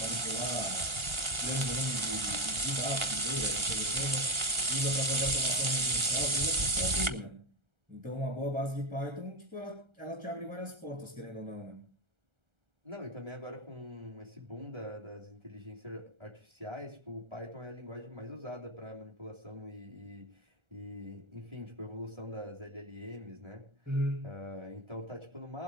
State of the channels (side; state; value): left; late; 1.3 ms